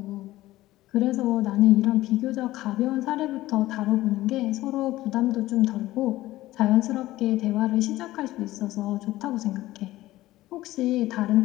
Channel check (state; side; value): quieter; right; 16.5 dB